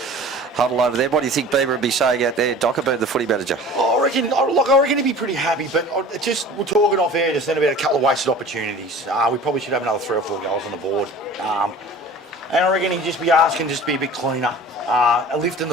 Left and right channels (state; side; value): normal; both; correlation 0.42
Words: huddle over there. What do you think Bieber would be saying out there? Doc about the footy manager. I reckon he'd be pretty happy, but we're talking off air just then about a couple of wasted opportunities. We probably should have another 3 or 4 goals on the board. And I reckon he'd just be asking just to be a bit cleaner, lifting